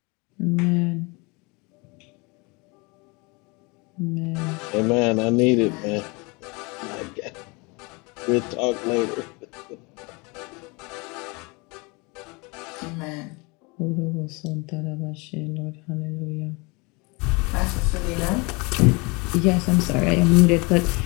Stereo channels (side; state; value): right; quieter; 28.1 dB